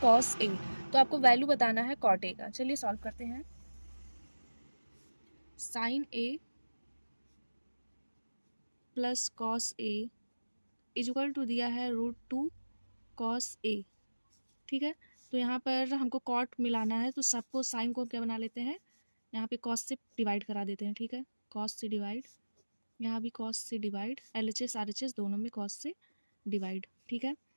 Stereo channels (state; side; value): inverted; both; correlation -1.00